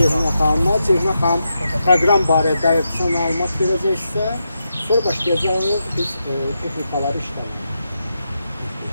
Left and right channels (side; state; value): both; inverted; correlation -0.86